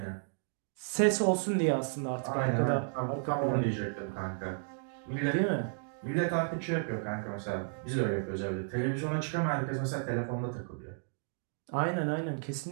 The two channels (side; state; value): left; silent; digital silence